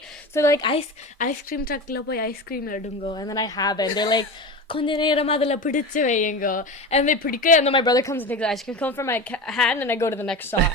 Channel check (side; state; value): both; normal; correlation 0.27